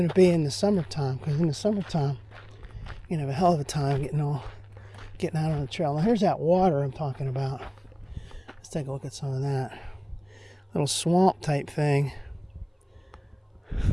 to be in the summertime, because in the summertime, you have a hell of a time getting out on the trail. Now here's that water I'm talking about. Let's take a look at some of that. Little swamp type thing.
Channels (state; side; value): identical; both; correlation 1.00